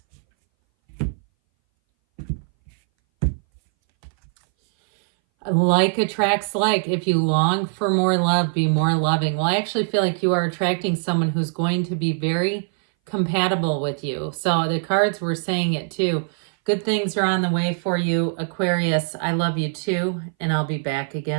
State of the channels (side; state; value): left; silent; 60 dB below the other